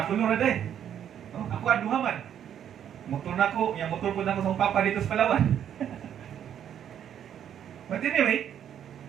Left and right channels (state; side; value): quieter; left; 9.6 dB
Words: nung raday. Oh, ako aduhaman. Motor na ko. Yung motor po na ko sa papa dito sa Palawan. But anyway,